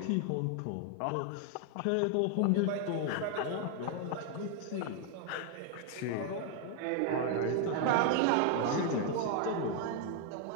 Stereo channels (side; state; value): both; different; correlation 0.00